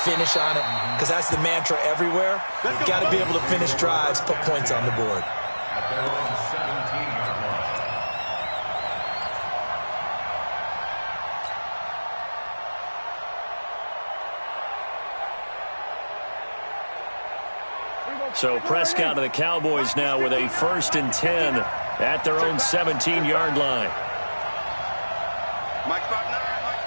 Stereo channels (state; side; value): inverted; both; correlation -1.00